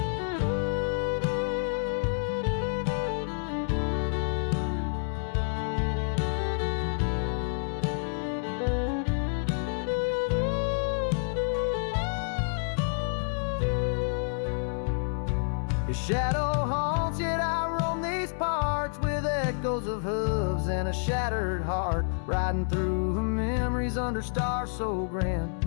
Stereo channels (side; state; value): right; silent; 59 dB below the other